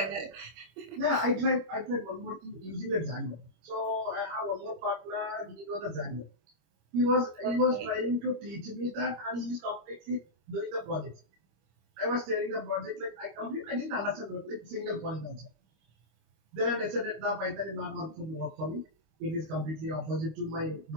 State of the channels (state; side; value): late; left; 25 ms